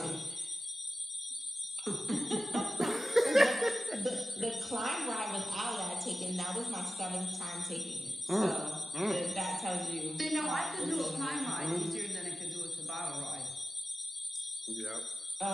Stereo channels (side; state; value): both; normal; correlation 0.94